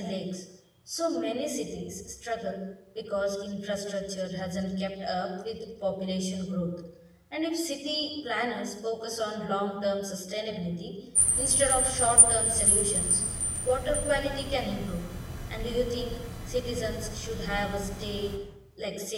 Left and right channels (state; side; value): identical; both; correlation 1.00